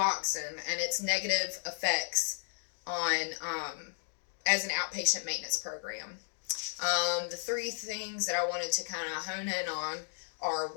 and its negative effects on as an outpatient maintenance program. The three things that I wanted to kind of hone in on are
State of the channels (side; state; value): right; silent; digital silence